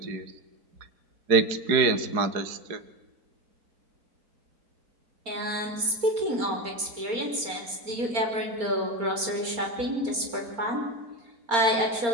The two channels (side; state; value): left; late; 4.3 ms